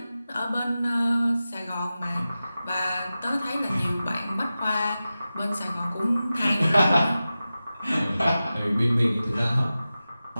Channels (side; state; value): both; inverted; correlation -0.94